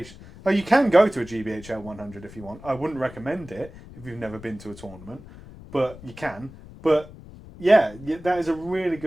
Oh, you can go to a GBHL 100 if you want. I wouldn't recommend it if you've never been to a tournament, but you can. But yeah, that is a really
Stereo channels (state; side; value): noise; left; rumble, 18 dB below the sound